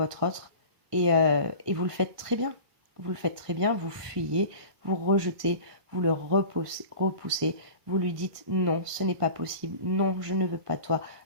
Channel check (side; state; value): left; late; 1.4 ms